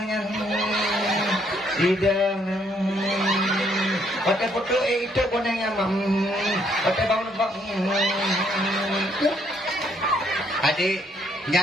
tidak pada foto itu bonengnya pada bangun adik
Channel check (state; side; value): normal; both; correlation 0.70